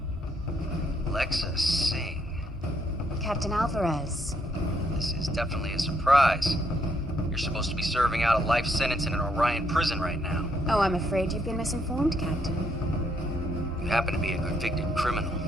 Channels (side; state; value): both; normal; correlation 0.73